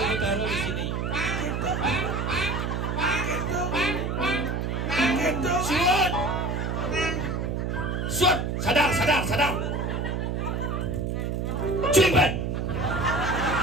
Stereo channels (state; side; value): noise; right; hum, 1 dB below the sound